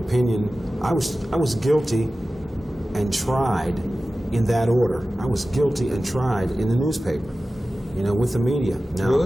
I was guilty and tried in that order. I was guilty and tried in the newspaper, you know, with the media. Now,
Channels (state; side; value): normal; both; correlation 0.95